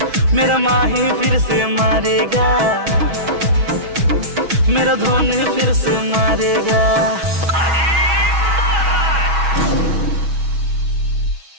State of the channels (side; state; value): left; late; 6.2 ms